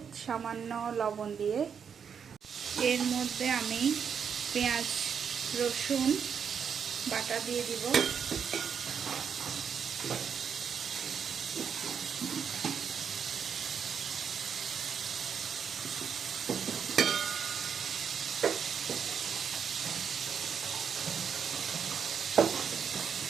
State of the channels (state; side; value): quieter; left; 7.1 dB